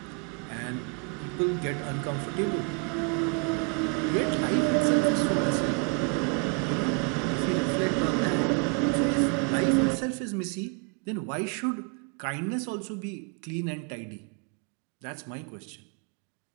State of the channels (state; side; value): quieter; left; 34.0 dB